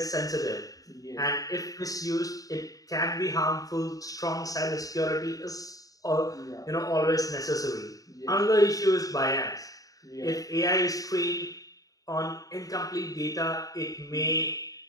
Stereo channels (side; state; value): right; late; 0.17 ms